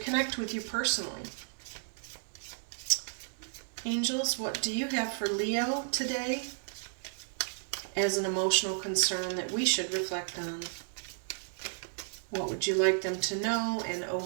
with you personally. Angels, what do you have for Leo today as an emotional concern that we should reflect on? What would you like them to know and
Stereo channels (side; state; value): left; silent; digital silence